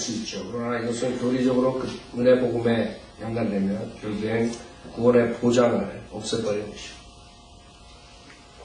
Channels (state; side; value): identical; both; correlation 1.00